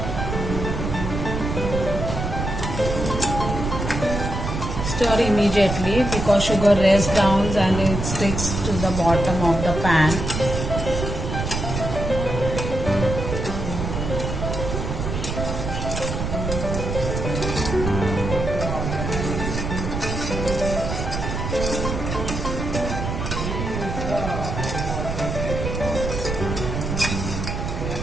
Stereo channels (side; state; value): right; noise; rumble, 3 dB below the sound